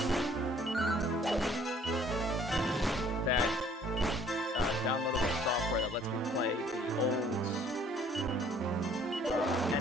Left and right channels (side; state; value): both; normal; correlation 0.58